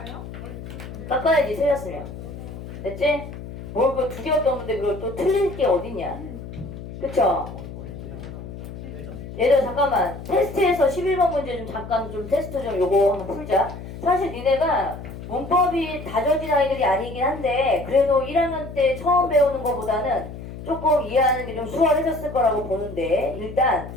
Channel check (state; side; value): noise; left; hum, 11 dB below the sound